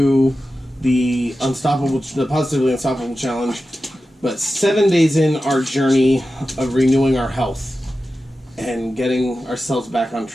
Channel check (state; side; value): normal; both; correlation 0.93